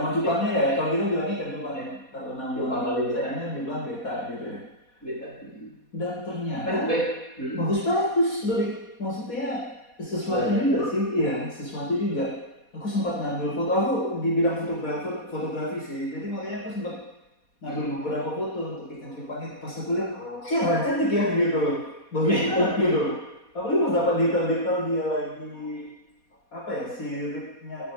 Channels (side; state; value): right; late; 4.2 ms